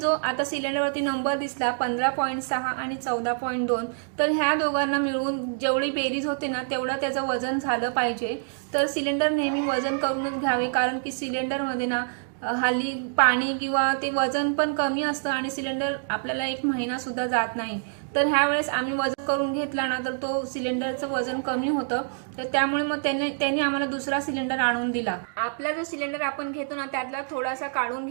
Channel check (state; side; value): silent; left; digital silence